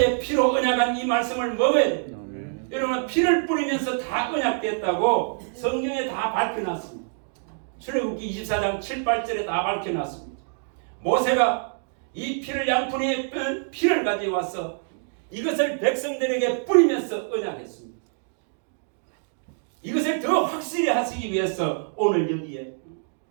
피로 언약한 이 말씀을 먹어야 됩니다. 여러분 피를 뿌리면서 다 언약됐다고 성경에 다 밝혀놨습니다. 출애굽기 24장 7, 8절에 다 밝혀놨습니다. 모세가 이 피를 양푼의 피를 가지고 와서 이것을 백성들에게 뿌리면서 언약했습니다. 이것을 더 확실히 하시기 위해서 오늘 여기에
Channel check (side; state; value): left; silent; 61 dB below the other